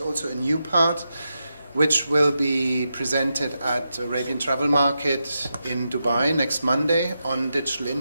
also a new part which will be presented at Arabian Travel Market in Dubai next Monday on digital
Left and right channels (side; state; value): both; inverted; correlation -0.88